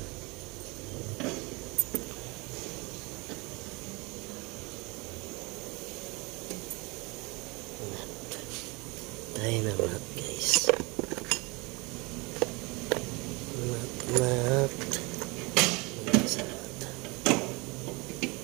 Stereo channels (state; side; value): quieter; left; 26.5 dB